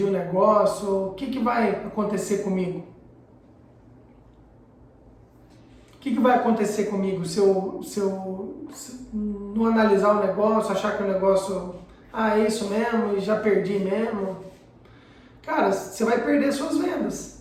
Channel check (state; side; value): identical; both; correlation 1.00